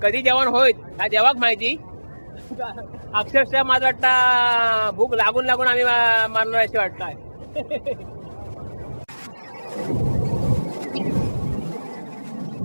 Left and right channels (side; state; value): both; inverted; correlation -1.00